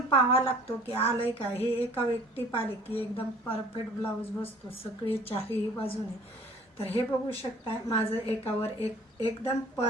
पाहावा लागतो की आलंय का. हे एका व्यक्ती पाहिले की एकदम परफेक्ट ब्लाऊज बसतो सगळे चारही बाजूने. तर हे बघू शकता माझं एकावर एक एकदम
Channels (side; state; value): both; normal; correlation 0.51